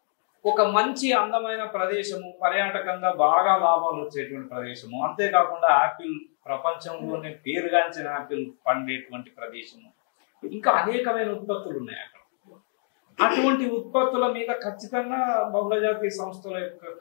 ఒక మంచి అందమైన ప్రదేశము, పర్యాటకంగా బాగా లాభాలు వచ్చేటువంటి ప్రదేశము, అంతేకాకుండా యాపిల్ ప్రపంచంలోనే పేరుగాంచిన యాపిల్ పండేటువంటి ప్రదేశము, ఇంకా అనేకమైన ఉత్పత్తులు ఉన్నాయి అక్కడ. అటువంటి ఉత్పత్తుల మీద ఖచ్చితంగా బహుళజాతీయ సంస్థల యొక్క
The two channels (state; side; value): silent; right; 56 dB below the other